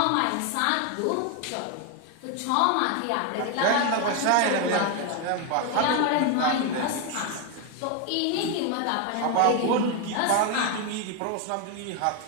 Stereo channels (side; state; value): both; different; correlation 0.01